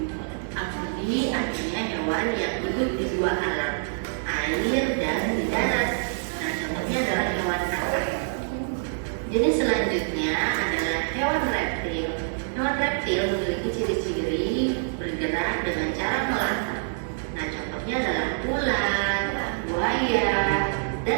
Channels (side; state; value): left; silent; digital silence